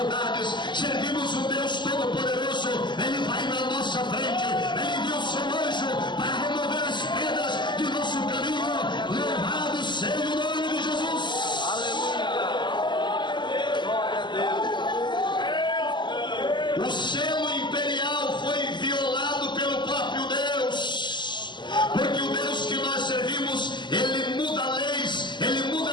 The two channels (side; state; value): right; late; 0.22 ms